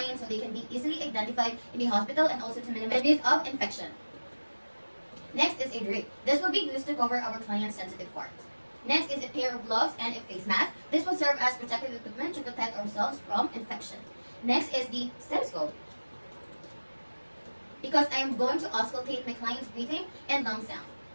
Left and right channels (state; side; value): inverted; both; correlation -1.00